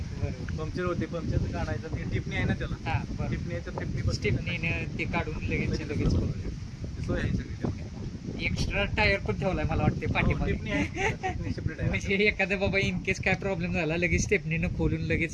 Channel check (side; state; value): both; identical; correlation 1.00